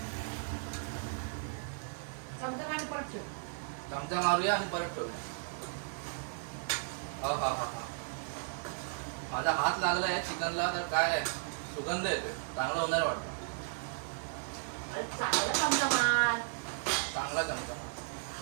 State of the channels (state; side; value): silent; left; digital silence